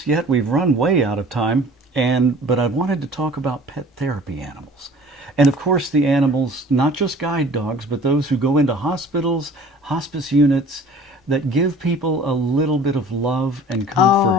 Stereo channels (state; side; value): normal; both; correlation 0.47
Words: yet, we've run way out of time, but I wanted to talk about pet therapy animals. And of course the animals, not just guide dogs, but those who go into hospitals, hospice units, that give people a little bit of love and comfort.